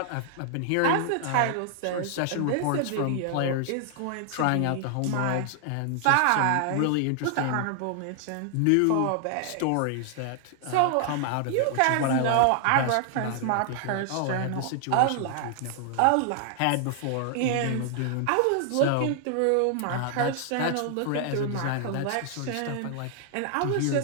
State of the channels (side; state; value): both; different; correlation 0.00